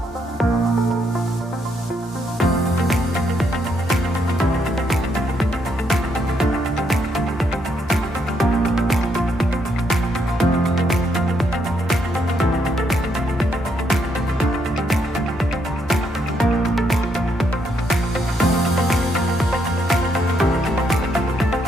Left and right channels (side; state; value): both; normal; correlation 0.75